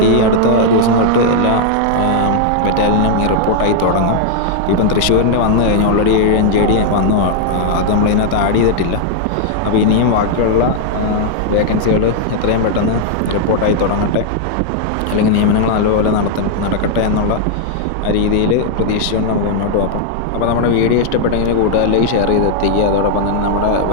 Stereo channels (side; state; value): both; different; correlation -0.01